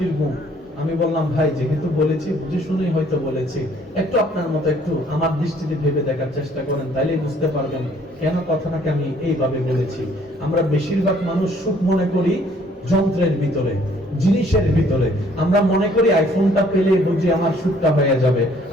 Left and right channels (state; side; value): normal; both; correlation 0.61